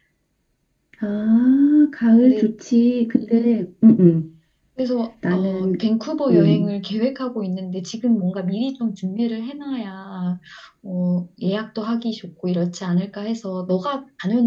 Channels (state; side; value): identical; both; correlation 1.00